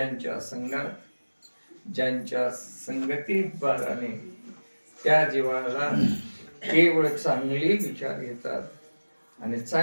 संगात ज्यांच्या संगतीत बाराने त्या जीवाला केवळ चांगले विचार येतात आणि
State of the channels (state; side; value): inverted; both; correlation -1.00